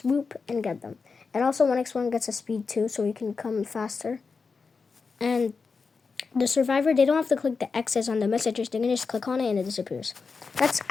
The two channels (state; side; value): quieter; right; 4.8 dB